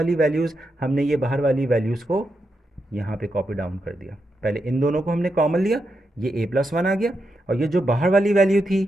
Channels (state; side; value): normal; both; correlation 0.85